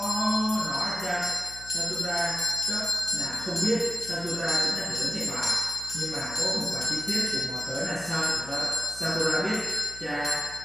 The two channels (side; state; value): left; noise; hum, 19 dB below the sound